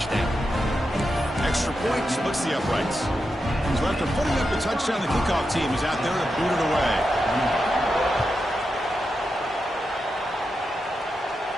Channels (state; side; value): normal; both; correlation 0.87